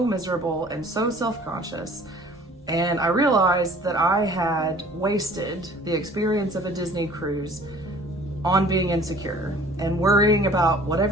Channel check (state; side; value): normal; both; correlation 0.50